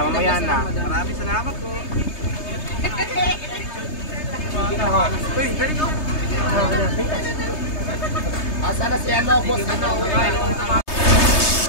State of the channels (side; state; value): right; late; 3.3 ms